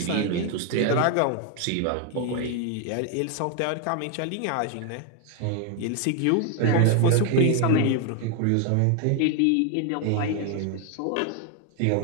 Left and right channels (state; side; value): different; both; correlation 0.01